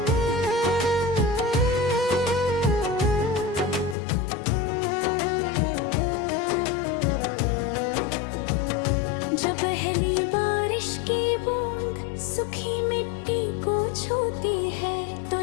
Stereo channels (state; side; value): drops out; right; at 4.0 s